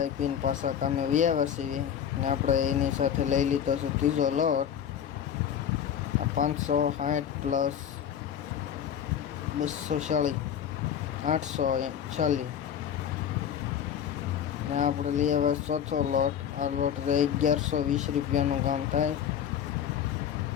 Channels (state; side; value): quieter; right; 9.0 dB